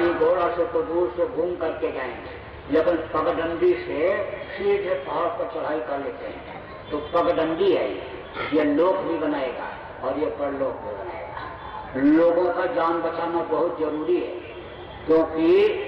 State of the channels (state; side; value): identical; both; correlation 1.00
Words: घोड़ा से तो दूर से घूम करके जाएंगे, लेकिन पगडंडी से सीधे पहाड़ पर चढ़ाई कर लेते हैं। तो पगडंडी है ये लोक भी बनाएगा और ये परलोक भी बनाएगा। लोगों का जान बचाना बहुत जरूरी है, क्योंकि